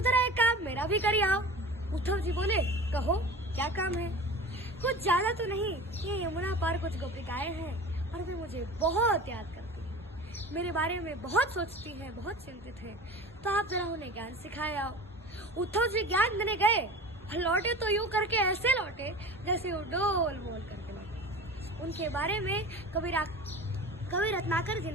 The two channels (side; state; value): both; normal; correlation 0.35